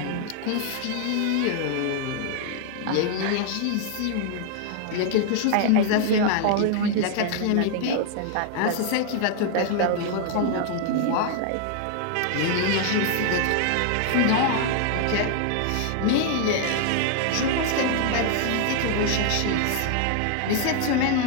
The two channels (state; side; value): different; both; correlation 0.00